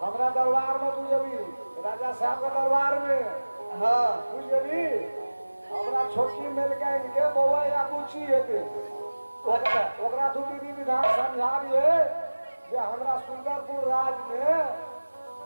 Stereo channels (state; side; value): inverted; both; correlation -1.00